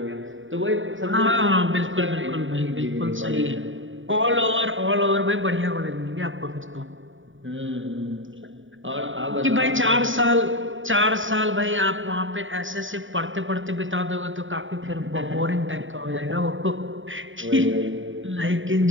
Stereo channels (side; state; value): left; late; 0.57 ms